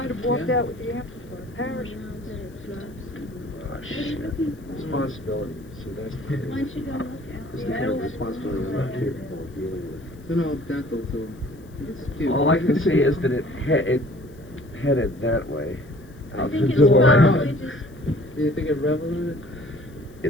have walked out with the amplifier. Parachute. Oh, shit. Responsibility. See, that's Why don't you go look at the kind of responsibility I'm not capable of dealing with. It's an old dental tool. It's cute. All I can say is that it headed that way. I Out think the it's door. probably just, Do you think it reveled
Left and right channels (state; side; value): noise; left; hiss, 30 dB below the sound